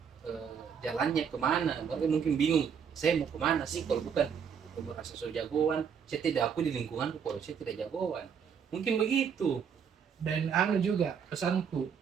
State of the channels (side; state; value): left; quieter; 7.1 dB